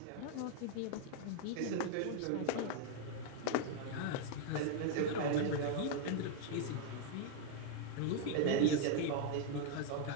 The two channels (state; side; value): different; both; correlation 0.00